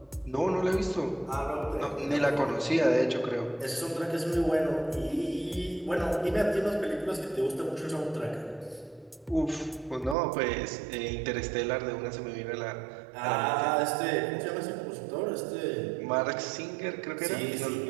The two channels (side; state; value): left; drops out; at 10.2 s